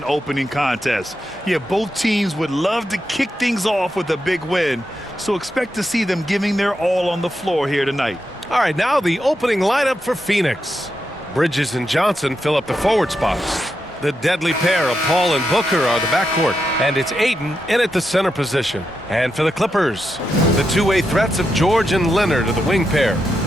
opening contest. Yeah, both teams would love to kick things off with a big win, so expect to see them giving their all on the floor here tonight. All right, now the opening lineup for Phoenix. Bridges and Johnson fill up the forward spots. The deadly pair of Paul and Booker are the backcourt, and it's Ayton in at the center position. And for the Clippers, the two-way threats of George and Leonard are the wing pair.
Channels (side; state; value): both; normal; correlation 0.85